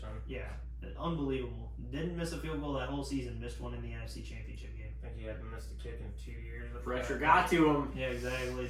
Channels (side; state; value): both; identical; correlation 1.00